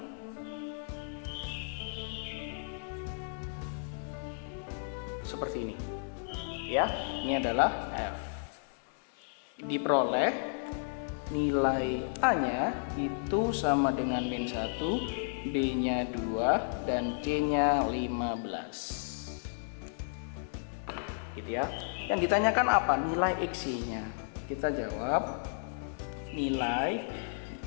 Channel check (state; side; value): silent; right; digital silence